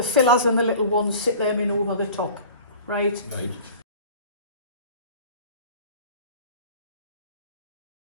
fillers and the little ones, sit them in over the top, right? Right.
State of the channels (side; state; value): both; inverted; correlation -0.42